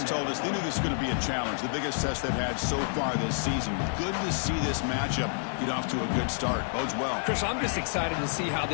told us they knew this was going to be a challenge. The biggest test they've had so far this season. Good to see this matchup get off to a good start. Bodes well. Chris, I'm just excited to see how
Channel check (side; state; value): right; silent; 59 dB below the other